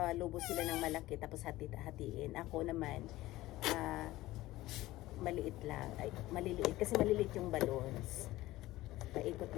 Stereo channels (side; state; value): right; quieter; 17.2 dB